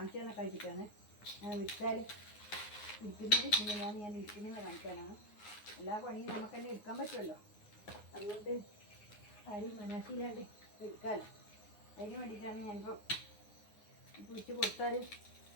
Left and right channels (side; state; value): right; late; 9.5 ms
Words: തന്നെ കഴിച്ചിട്ടാണ് ഞാൻ വിൽച്ചാൽ ഇരിക്കുന്നത്. ഇങ്ങനെയാണ് ഞാൻ ഇരിക്കുന്നത് കാണിക്കാനാണ്. എല്ലാ പണിയും നമുക്ക് തന്നെ എടുക്കാൻ പറ്റുമല്ലോ, അതുകൊണ്ട് ആരും മനസ്സിലാണ്ട് എടുക്കാമല്ലോ. അതിന് വേണ്ടിയിട്ടാണ് ഞാനിപ്പോൾ പിടിച്ച് കൊടുത്താൽ